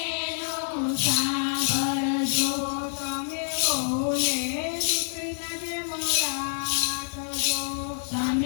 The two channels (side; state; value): right; silent; 60 dB below the other